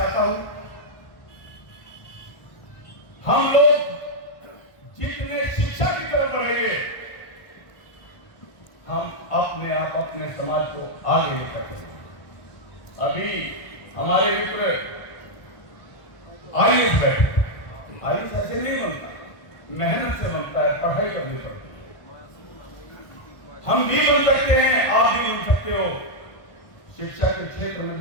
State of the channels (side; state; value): right; late; 1.5 ms